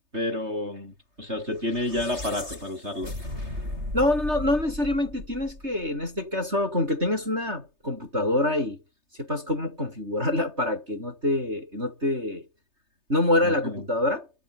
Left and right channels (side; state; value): left; late; 3.3 ms